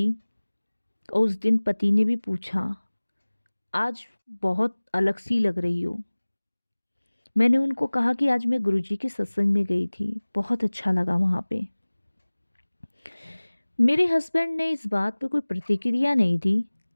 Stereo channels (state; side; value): inverted; both; correlation -1.00